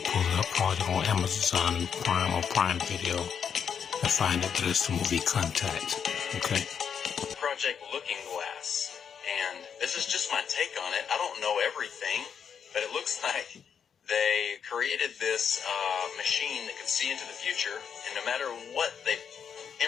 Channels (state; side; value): quieter; right; 7.3 dB